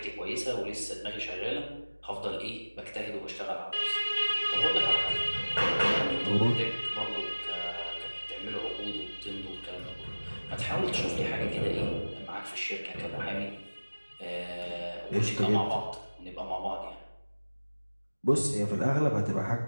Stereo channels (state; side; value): inverted; both; correlation -1.00